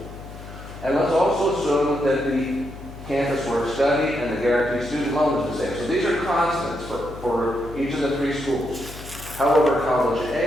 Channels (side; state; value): left; noise; hum, 14 dB below the sound